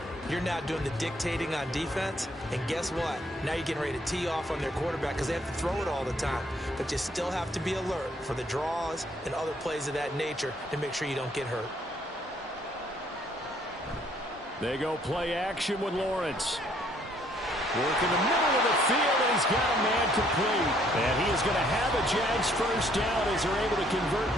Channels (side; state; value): both; normal; correlation 0.65